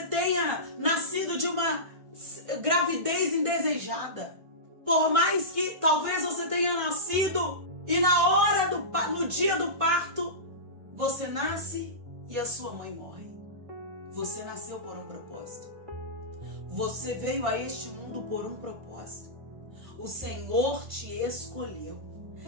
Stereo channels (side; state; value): left; late; 1.5 ms